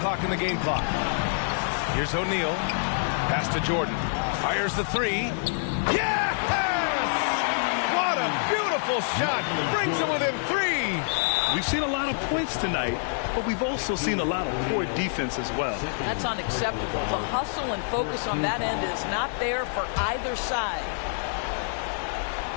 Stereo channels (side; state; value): right; silent; digital silence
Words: and the game clock. Here's O'Neal. Pass to Jordan. Fires the three. Yes! What a beautiful shot. Brings it within 3. We've seen a lot of points tonight, but we've also seen a lot of poor defense as well. That's unacceptable. The hustle and focus on that end is not there for either side.